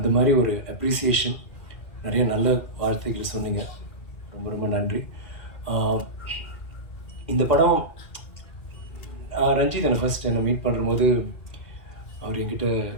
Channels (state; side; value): late; right; 2.4 ms